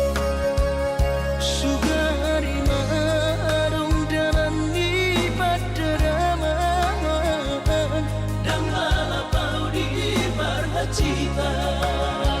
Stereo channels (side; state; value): both; identical; correlation 1.00